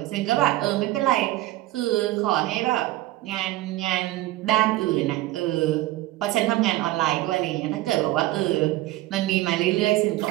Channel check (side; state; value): left; quieter; 16.8 dB